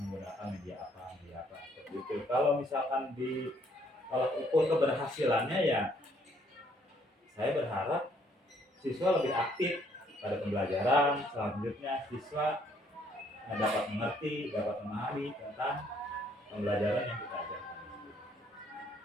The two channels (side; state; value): both; normal; correlation 0.66